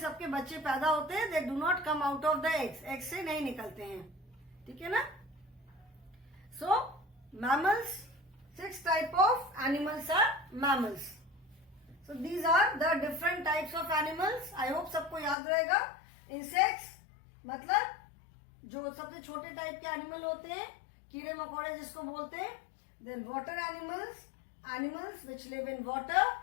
बच्चे पैदा होते हैं. They do not come out of the eggs. eggs से नहीं निकलते हैं. ठीक है ना. So mammals, 6 type of animals are mammals. So these are the different types of animals. I hope सबको याद रहेगा. Insects मतलब जो सबसे छोटे टाइप के एनिमल होते हैं, कीड़े मकोड़े जिसको बोलते हैं. Then water animals, animals which live in water.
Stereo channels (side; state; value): right; drops out; at 15.4 s